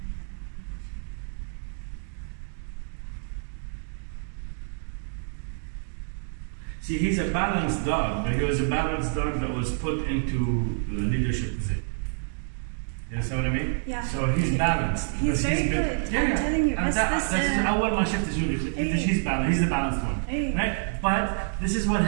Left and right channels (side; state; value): left; silent; digital silence